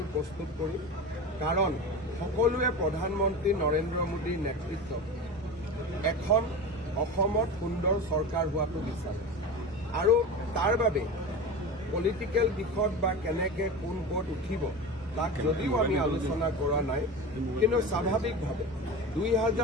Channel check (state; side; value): normal; both; correlation 0.28